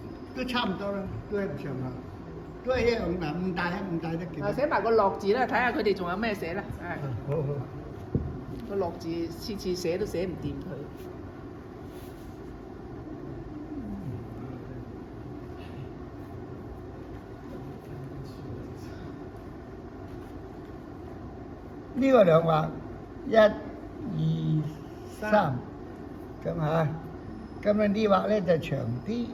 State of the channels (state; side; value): identical; both; correlation 1.00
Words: 都差唔多啦，都係唔上下，都係一樣嗱，唔大得幾多。寫埋個樂字啦，睇下佢哋仲有咩寫啦。係。好。個樂字次次寫都寫唔掂佢。呢個兩畫1、2、3咁嚇，咁樣呢畫咧就長啲。